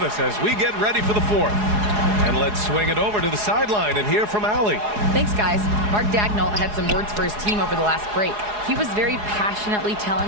us as we get ready for the 4th. And let's swing it over to the sideline and hear from Allie. Thanks, guys. Mark Dagnall had some words for his team over the last break. He was very passionately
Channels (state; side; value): late; left; 4.8 ms